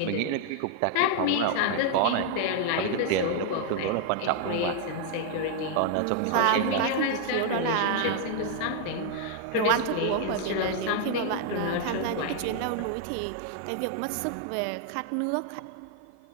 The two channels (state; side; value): different; both; correlation 0.00